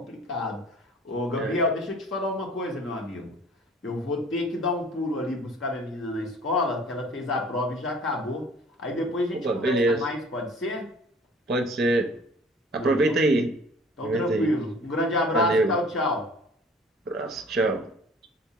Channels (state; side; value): normal; both; correlation 0.50